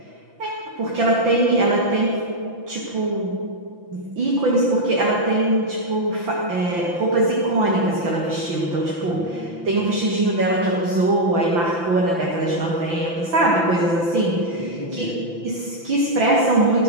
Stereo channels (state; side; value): late; left; 5.9 ms